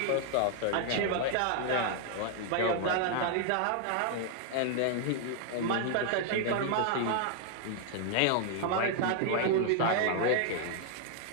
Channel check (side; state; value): both; different; correlation 0.00